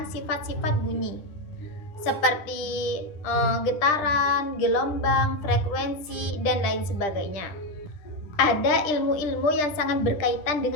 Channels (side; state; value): right; late; 10 ms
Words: sifat-sifat bunyi seperti getaran, gelombang, frekuensi, dan lain sebagainya. Ada ilmu-ilmu yang sangat berkaitan